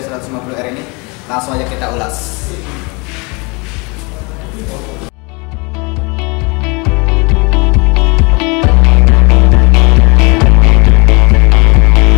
150R ini? Langsung aja kita ulas.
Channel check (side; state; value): right; quieter; 28.8 dB